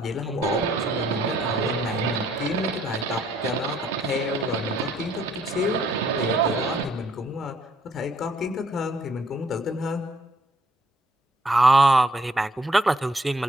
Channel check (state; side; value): normal; both; correlation 0.65